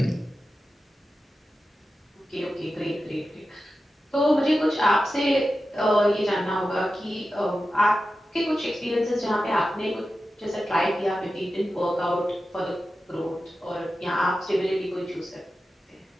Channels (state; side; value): normal; both; correlation 0.92